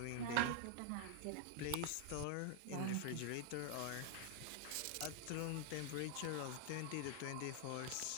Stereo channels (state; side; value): different; both; correlation 0.00